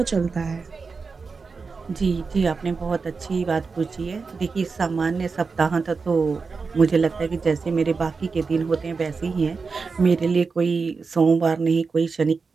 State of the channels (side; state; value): left; quieter; 4.7 dB